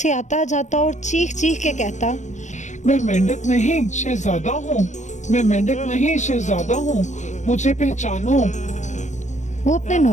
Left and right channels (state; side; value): late; right; 0.35 ms